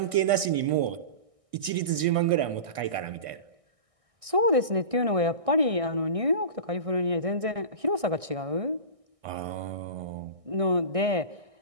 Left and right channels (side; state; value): left; late; 1.6 ms